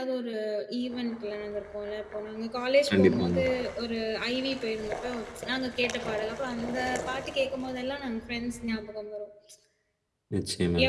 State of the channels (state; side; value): identical; both; correlation 1.00